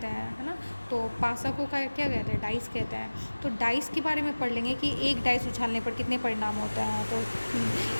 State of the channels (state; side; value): inverted; both; correlation -1.00